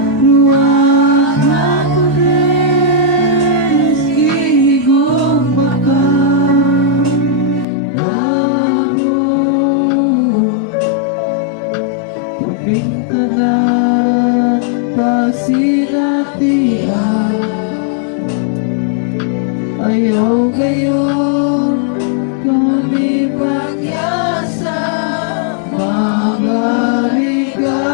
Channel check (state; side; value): drops out; right; at 7.7 s